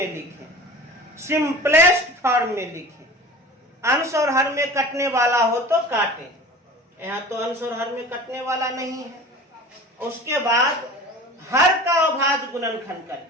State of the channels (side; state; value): both; normal; correlation 0.38